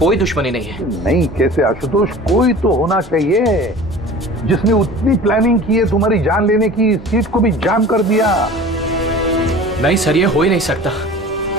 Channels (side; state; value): both; normal; correlation 0.41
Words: दुश्मनी नहीं है। नहीं कैसे आशुतोष, कोई तो होना चाहिए जिसने उतनी प्लानिंग की है तुम्हारी जान लेने की, सीट को भी जाम कर दिया। नहीं सर, ये हो ही नहीं सकता,